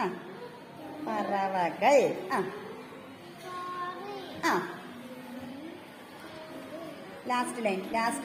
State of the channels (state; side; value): identical; both; correlation 1.00